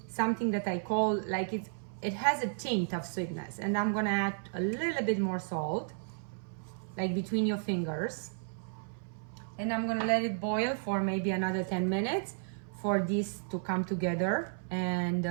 something that I call like it has a tint of sweetness. And I'm gonna add a little bit more salt, like between your fingers, and I'm gonna let it boil for maybe another 10 minutes for this to come together. And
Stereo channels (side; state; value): left; silent; 56 dB below the other